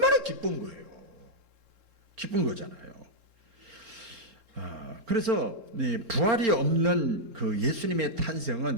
기쁜 거예요. 기쁜 거잖아요. 그래서 부활이 없는 그 예수님의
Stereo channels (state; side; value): late; left; 4.4 ms